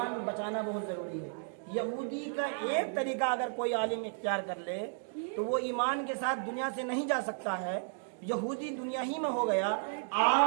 بچانا بہت ضروری ہے۔ یہودی کا ایک طریقہ اگر کوئی عالم اختیار کر لے تو وہ ایمان کے ساتھ دنیا سے نہیں جا سکتا ہے، یہودی دنیا ہی میں ہو گیا۔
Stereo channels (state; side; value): silent; left; digital silence